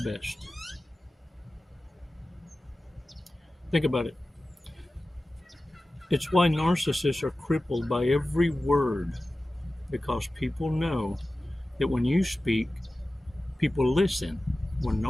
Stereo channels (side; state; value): both; normal; correlation 0.95